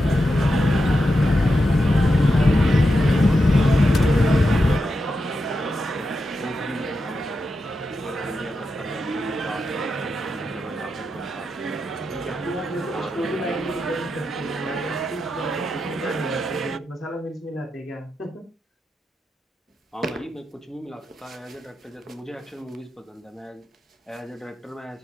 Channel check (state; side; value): normal; both; correlation 0.87